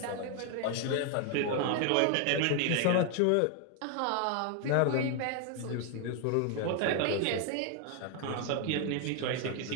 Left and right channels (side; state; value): both; different; correlation 0.00